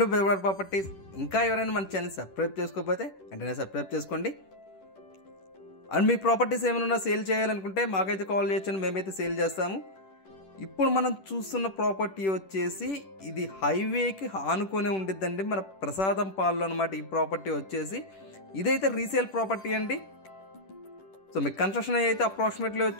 to బెవర్ properties. ఇంకా ఎవరైనా మన ఛానల్ సబ్స్క్రైబ్ చేసుకోకపోతే వెంటనే సబ్స్క్రైబ్ చేసుకోండి. అండ్ మీ ప్రాపర్టీస్ ఏమైనా సేల్ చేయాలనుకుంటే మాకైతే కాల్ చేయొచ్చు, మేమైతే సేల్ చేస్తాము. ఇప్పుడు మనం చూస్తున్న ప్రాపర్టీ వచ్చేసి ఇది హైవేకి ఆనుకొని ఉండిద్దండి, మన ప్రసాదం పాల్లో అనమాట. ఈ ప్రాపర్టీ వచ్చేసి ఇదైతే రీసేల్ ప్రాపర్టీ అండి. సో మీకు కన్స్ట్రక్షన్ అయితే అప్రాక్సిమేట్లీ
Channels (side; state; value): right; late; 10 ms